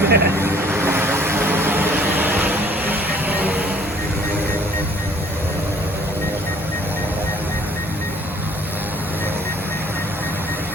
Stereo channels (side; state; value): both; normal; correlation 0.57